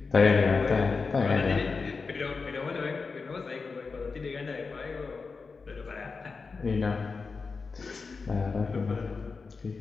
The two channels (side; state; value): right; quieter; 4.6 dB